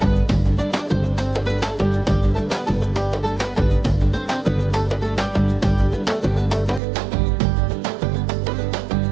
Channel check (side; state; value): left; drops out; at 6.8 s